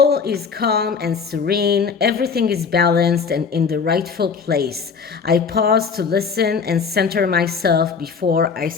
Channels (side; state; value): right; quieter; 5.7 dB